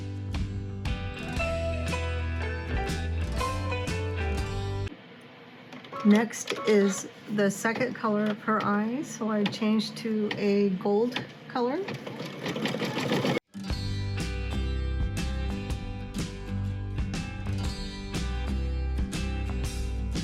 Next is the second color of her eyes, so I changed to a gold color.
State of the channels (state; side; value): identical; both; correlation 1.00